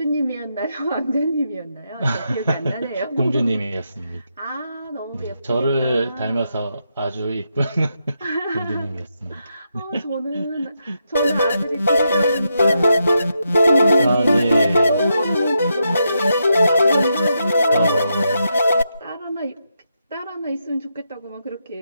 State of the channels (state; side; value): inverted; both; correlation -0.83